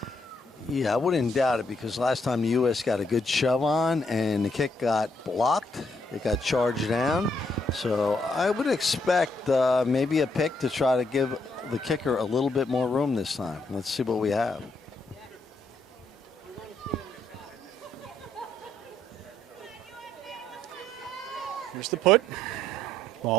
Yeah, I wouldn't doubt it, because last time the U.S. got a good shove on and the kick got blocked. It got charged down. So I would expect maybe a pick to try to give the kicker a little bit more room this time. Let's see what we have. Here's the put.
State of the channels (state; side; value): normal; both; correlation 0.73